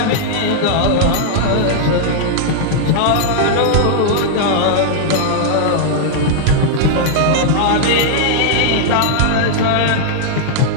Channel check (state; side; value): different; both; correlation -0.01